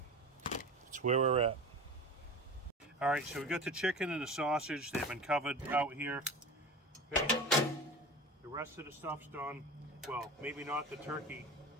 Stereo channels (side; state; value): both; normal; correlation 0.32